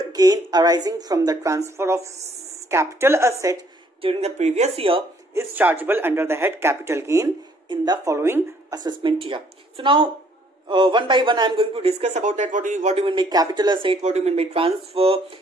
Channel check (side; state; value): both; normal; correlation 0.64